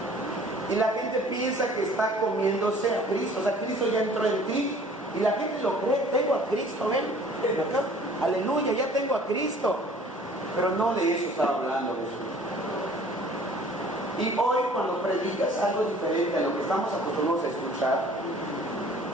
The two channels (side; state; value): both; normal; correlation 0.52